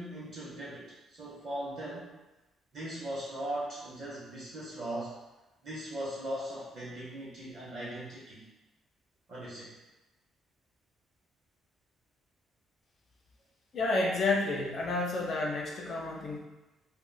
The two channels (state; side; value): normal; both; correlation 0.70